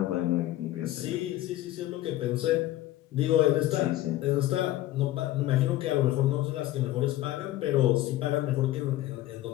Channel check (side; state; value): right; quieter; 15.0 dB